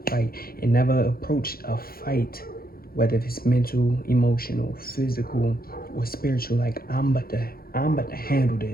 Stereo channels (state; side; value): late; right; 0.43 ms